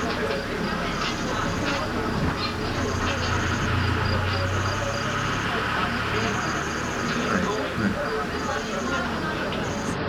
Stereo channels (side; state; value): both; identical; correlation 1.00